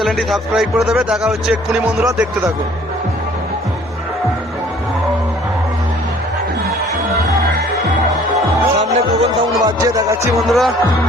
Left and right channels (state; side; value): normal; both; correlation 0.55